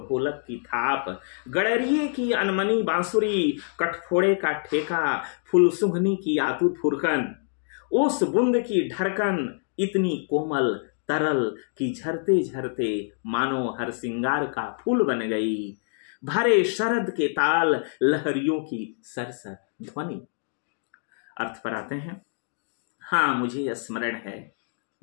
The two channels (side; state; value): right; silent; digital silence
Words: ढोलक की थाप, गड़रिये की अनमनी बांसुरी, कठफोड़े का ठेका, फुलसुंघनी की आतुर फुरकन, उस बूंद की ढरकन इतनी कोमल तरल कि झरते झरते मानो हर सिंगार का फूल बन गई, भरे शरद के ताल लहरियों की सरसर ध्वनि। अर्थ पर आते हैं, हाँ मुझे स्मरण है,